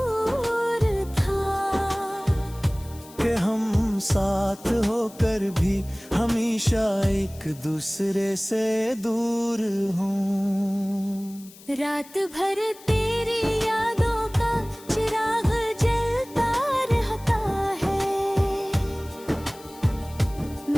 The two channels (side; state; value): left; noise; hiss, 21 dB below the sound